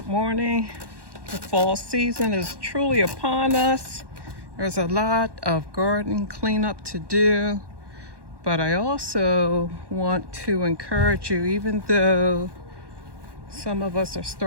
morning. The fall season is truly upon us. There's a lot of garden cleanup to do, but I also want to encourage you, even though some of us are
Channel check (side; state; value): left; late; 1.1 ms